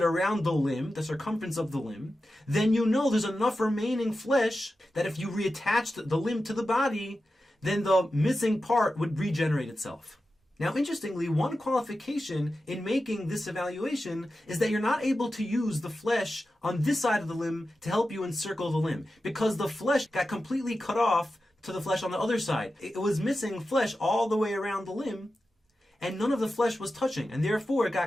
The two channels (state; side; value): normal; both; correlation 0.92